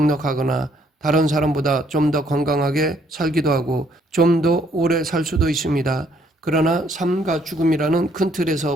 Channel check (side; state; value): both; normal; correlation 0.67